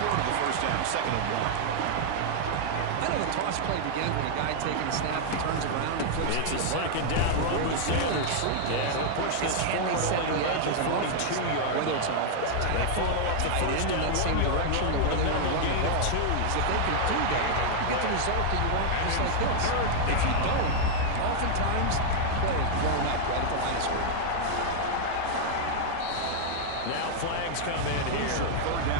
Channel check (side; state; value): both; different; correlation -0.01